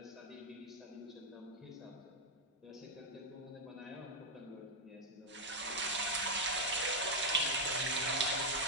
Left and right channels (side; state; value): both; normal; correlation 0.00